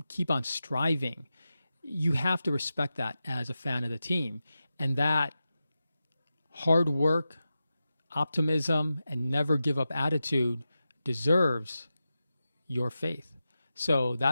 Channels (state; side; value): inverted; both; correlation -0.92